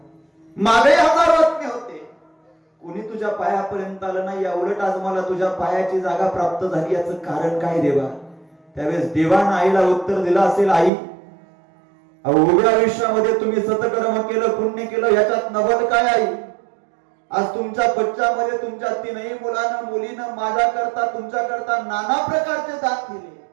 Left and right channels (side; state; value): left; drops out; at 10.9 s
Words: मागे हजारो आत्मे होते, कोणी तुझ्या पायापर्यंत आलं नाही, या उलट आज मला तुझ्या पायाची जागा प्राप्त झाली, याचं कारण काय देवा? त्यावेळेस देवानं आईला उत्तर दिलं असेल, आई उभ्या आयुष्यामध्ये तुम्ही सतकर्म केलं, पुण्य केलं, याच्यात नवल काय आई? आज तुमच्या बच्च्यामध्ये तुमच्या तीनही मुलीनं माझ्या करता तुमच्या करता नाना प्रकारचे दान दिले.